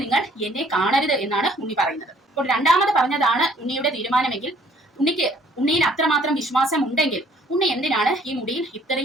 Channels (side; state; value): both; normal; correlation 0.60